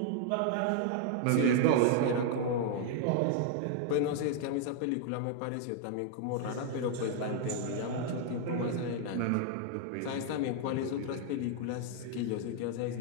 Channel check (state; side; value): different; both; correlation 0.00